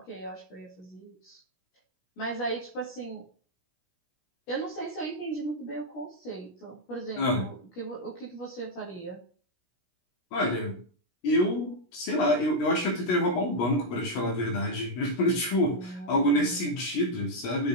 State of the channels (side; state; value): right; late; 17 ms